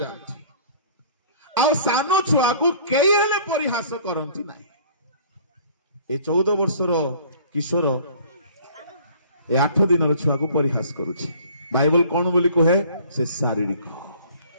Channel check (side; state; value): both; inverted; correlation -0.51